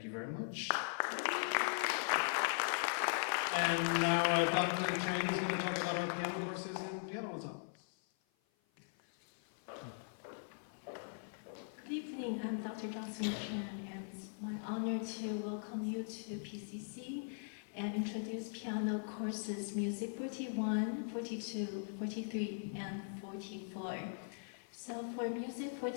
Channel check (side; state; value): right; silent; 51 dB below the other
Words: you very much. And now Dr. Chang is going to talk about our piano courses and piano ensembles. Good evening, I'm Dr. Jocelyn Chan, and it's my honor to welcome you to PCC and introduce piano courses Music 41, 42, 43, and 44. So for Music